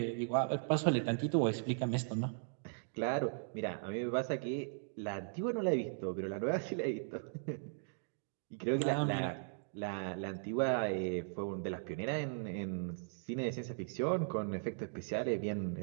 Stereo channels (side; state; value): left; silent; digital silence